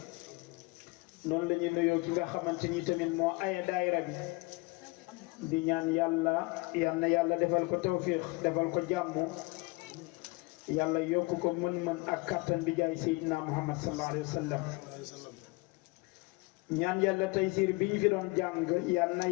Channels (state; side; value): quieter; right; 26.1 dB